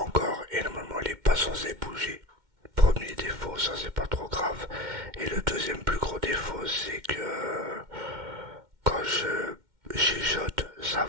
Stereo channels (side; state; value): left; late; 2.1 ms